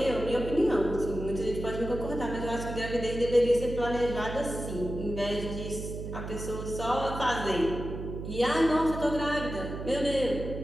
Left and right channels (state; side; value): noise; right; hum, 7 dB below the sound